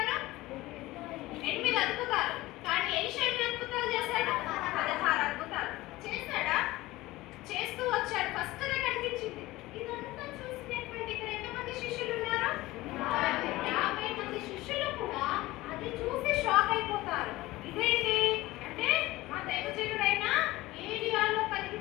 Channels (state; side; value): quieter; right; 18.6 dB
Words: 8 అద్భుతాలు. కానీ ఎలీషా ఎన్ని అద్భుతాలు చేశాడు? 16 అద్భుతాలు చేశాడా? చేస్తూ వచ్చాడు. ఫస్ట్ దే కనిపించింది. ఇదంతా చూసినటువంటి ఇక్కడ ఎంతమంది శిష్యులు ఉన్నారు? 50 మంది శిష్యులు కూడా అది చూసి షాక్ అయిపోతారు. ఇదేంటి అంటే, మా దైవజనుడైన ఏలియాలో